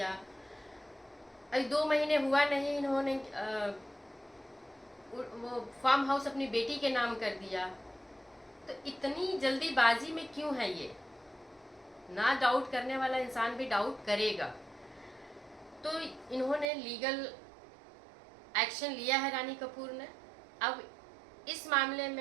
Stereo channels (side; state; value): left; drops out; at 16.7 s